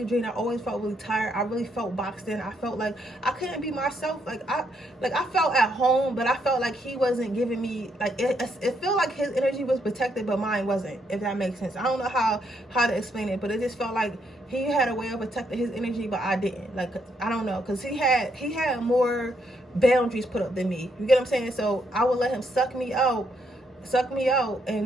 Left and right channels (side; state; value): both; normal; correlation 0.75